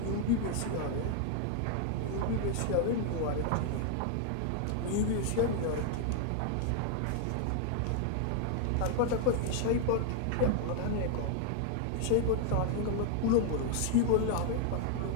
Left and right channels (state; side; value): different; both; correlation 0.00